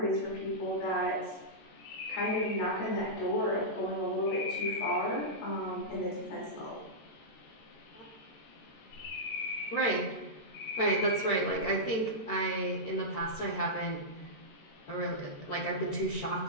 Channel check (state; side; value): late; right; 14 ms